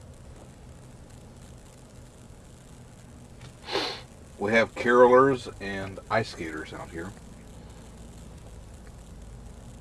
We have carolers and ice skaters out here.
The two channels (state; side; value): identical; both; correlation 1.00